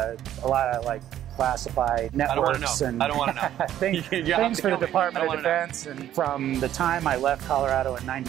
lot of like classified networks and I don't want to know. things for the Department of Defense. And from the time I left Colorado in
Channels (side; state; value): left; quieter; 11.7 dB